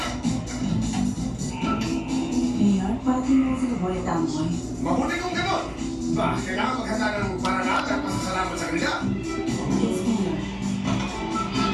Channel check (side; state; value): both; identical; correlation 1.00